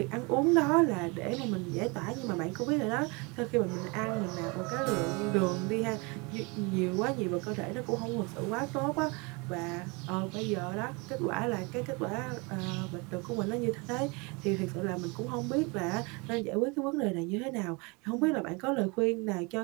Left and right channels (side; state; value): left; quieter; 28.8 dB